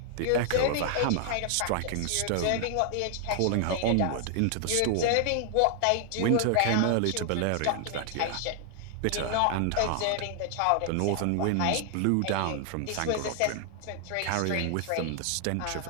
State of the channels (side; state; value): both; different; correlation 0.00